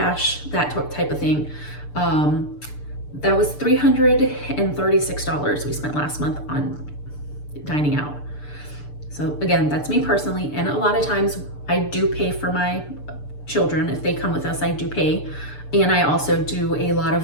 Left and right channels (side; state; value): right; late; 6.8 ms